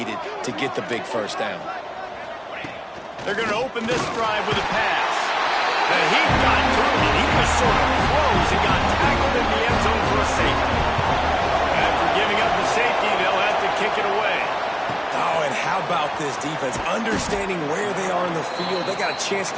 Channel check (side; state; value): both; identical; correlation 1.00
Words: to get the big first down. They're going to open this drive with a pass. And he got to it, and he was sort of close and got tackled in the end zone for a safety. After giving up the safety, they'll have to kick it away. Oh, and how about this defense? Understanding where they are in the field. They got a chance